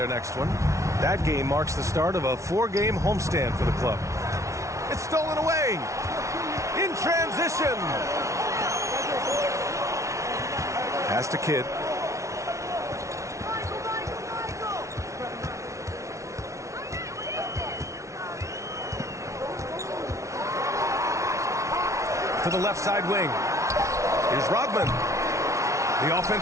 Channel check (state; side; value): late; left; 0.14 ms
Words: next one. That game marks the start of a 4-game homestand for the club. It's stolen away. In transition. Pass to Kidd. To the left side wing. Here's Rodman. The